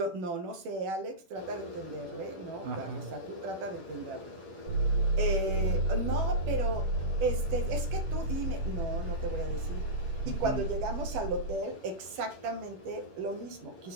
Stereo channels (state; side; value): late; left; 11 ms